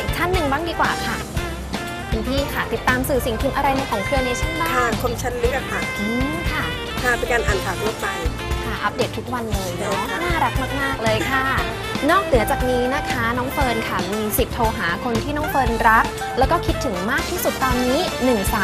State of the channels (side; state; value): both; identical; correlation 1.00